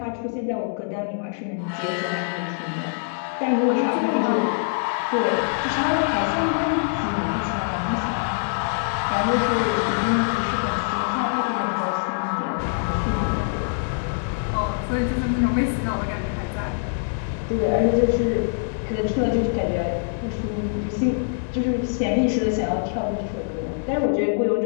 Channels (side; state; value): right; silent; digital silence